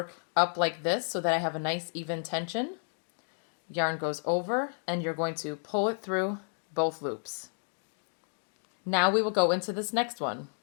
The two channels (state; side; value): silent; right; 57 dB below the other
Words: up like this so that I have a nice even tension. Yarn goes over and you're going to pull it through both loops. Now we will go into this next one.